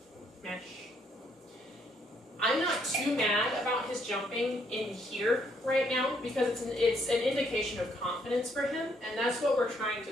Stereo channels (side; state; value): both; normal; correlation 0.71